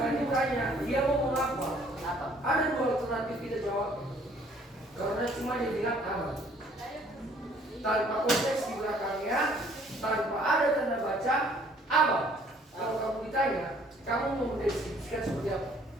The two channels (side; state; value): both; normal; correlation 0.59